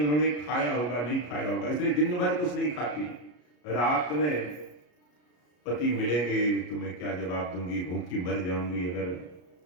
खाया होगा नहीं खाया होगा, इसलिए दिन भर कुछ नहीं खाती। रात में पति मिलेंगे तो मैं क्या जवाब दूंगी, भूखी मर जाऊंगी अगर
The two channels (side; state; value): right; late; 33 ms